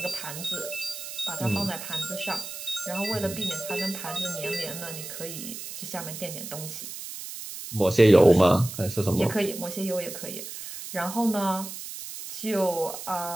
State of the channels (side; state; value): right; noise; hiss, 9 dB below the sound